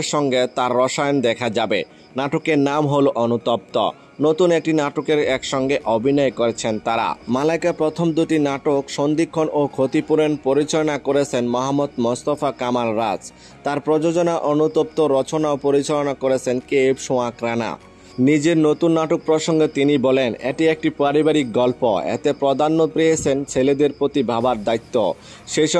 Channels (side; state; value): both; identical; correlation 1.00